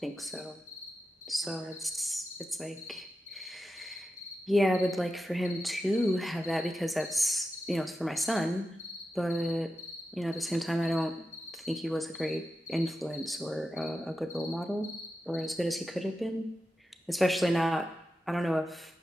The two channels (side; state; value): both; normal; correlation 0.90